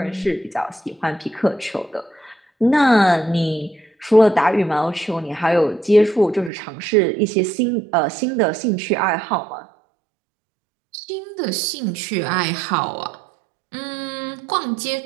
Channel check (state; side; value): drops out; left; at 6.5 s